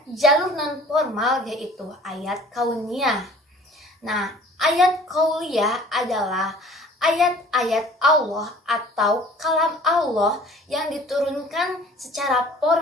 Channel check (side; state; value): both; normal; correlation 0.49